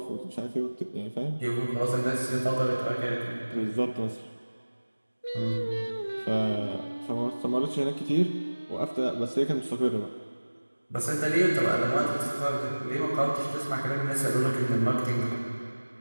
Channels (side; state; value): both; inverted; correlation -1.00